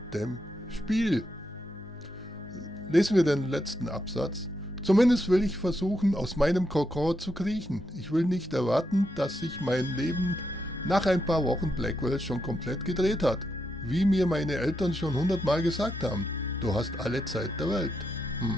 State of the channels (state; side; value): normal; both; correlation 0.82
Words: dem Spiel. Lesen wir den letzten Absatz. Zumindest will ich versuchen, aus meinem Kokon zu kriechen. Ich will nicht erwarten, dass sich mein Leben nach ein paar Wochen Blackwell schon komplett gedreht hat. Wie mir meine Eltern schon 100-mal gesagt haben. Du hast alle Zeit der Welt.